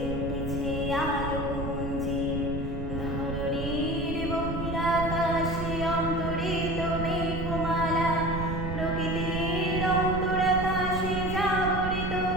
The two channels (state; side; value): noise; right; rumble, 5 dB below the sound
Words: উঠেছে আলোক মঞ্জির। ধরণীর বহিরাকাশে অন্তরিত মেঘমালা, প্রকৃতির অন্তরাকাশে জাগরিত